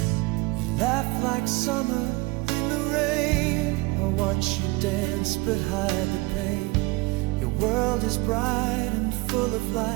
You laugh like summer in the rain. I watch you dance but hide the pain. Your world is bright and full of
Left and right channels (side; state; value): left; quieter; 23.5 dB